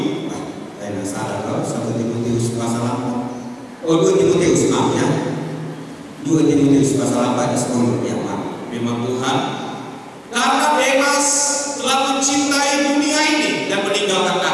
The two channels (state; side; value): identical; both; correlation 1.00